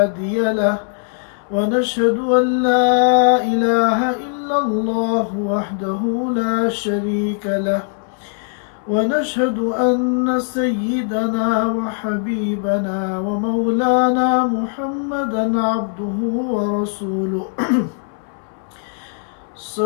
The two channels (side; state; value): right; silent; 62 dB below the other